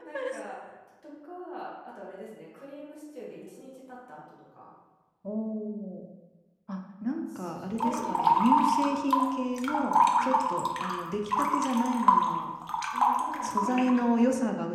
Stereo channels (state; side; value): identical; both; correlation 1.00